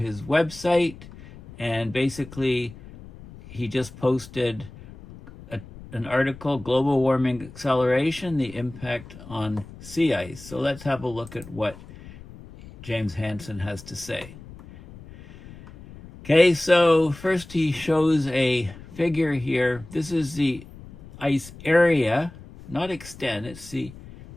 website. And basically, he just posted an article, Global Warming Acceleration, the Impact on Sea Ice. So let's have a look at what James Hansen has to say. Okay, so first he shows a figure here. This is the ice area, not extent. It says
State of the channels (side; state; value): left; noise; rumble, 18 dB below the sound